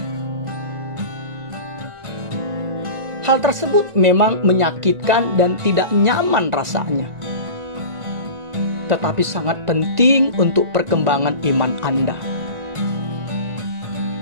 Hal tersebut memang menyakitkan dan tidak nyaman rasanya, tetapi sangat penting untuk perkembangan iman Anda.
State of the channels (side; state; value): left; late; 1.9 ms